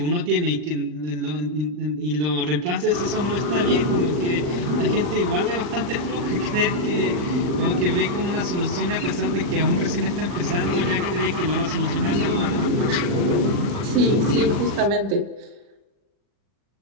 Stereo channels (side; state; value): left; late; 40 ms